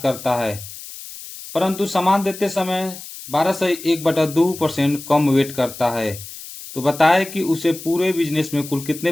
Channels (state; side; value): noise; left; hiss, 13 dB below the sound